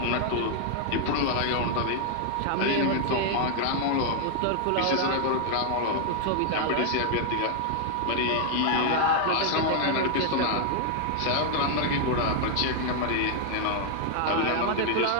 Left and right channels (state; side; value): different; both; correlation 0.00